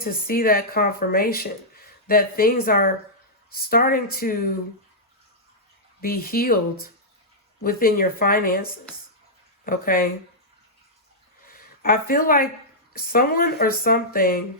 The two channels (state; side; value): normal; both; correlation -0.10